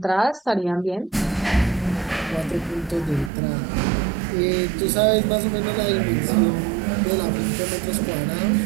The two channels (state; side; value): drops out; left; at 3.3 s